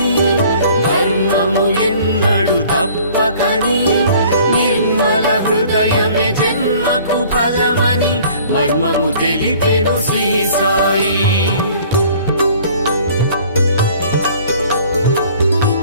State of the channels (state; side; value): inverted; both; correlation -0.52